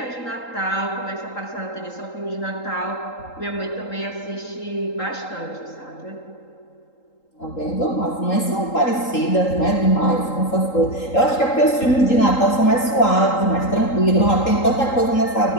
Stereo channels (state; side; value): late; right; 3.8 ms